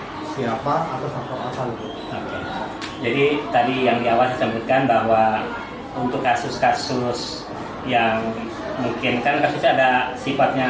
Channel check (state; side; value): identical; both; correlation 1.00